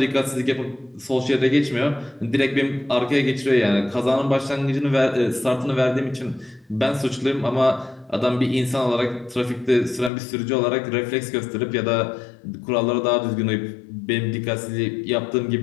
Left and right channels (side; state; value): right; drops out; at 10.1 s